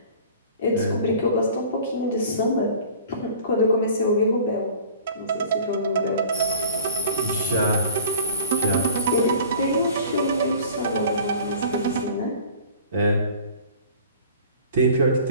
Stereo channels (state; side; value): inverted; both; correlation -0.44